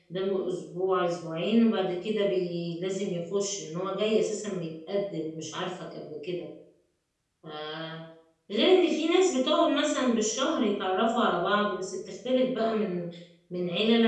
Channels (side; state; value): both; identical; correlation 1.00